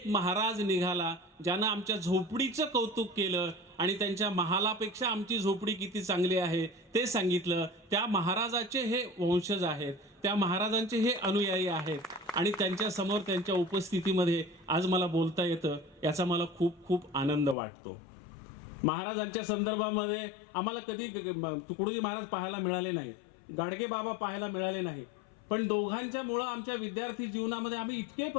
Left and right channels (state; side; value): drops out; right; at 17.6 s